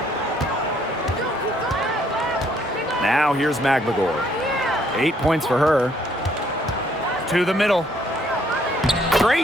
Now here's Magbagor. 8 points for her. To the middle.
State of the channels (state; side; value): normal; both; correlation 0.66